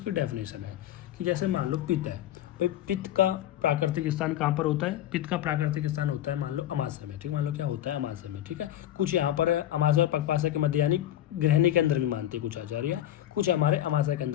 डेफिनेशन है कि जैसे मान लो पित्त है, भाई पित्त का प्राकृतिक स्थान कहाँ पर होता है, पित्त का प्राकृतिक स्थान होता है मान लो अमाशय में, ठीक, मान लो क्या होता है अमाशय में, ठीक है। कुछ यहाँ पर है अमाशय और पकवाशय के मध्य यानी गृहिणी के अंदर भी मानते हैं कुछ आचार्य, कुछ हमारे अमाशय के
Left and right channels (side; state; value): right; quieter; 12.4 dB